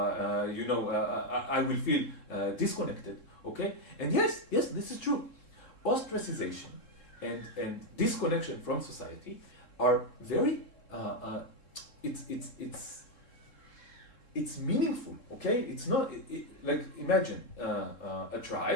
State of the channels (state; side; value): late; right; 3.7 ms